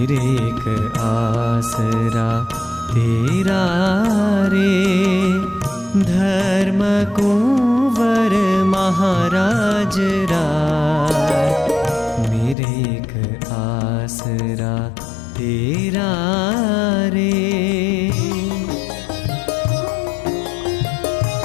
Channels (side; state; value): right; drops out; at 12.6 s